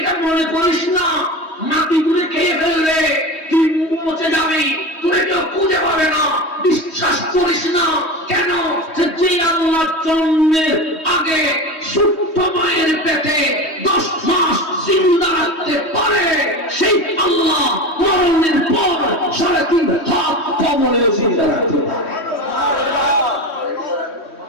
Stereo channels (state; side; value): late; right; 3.1 ms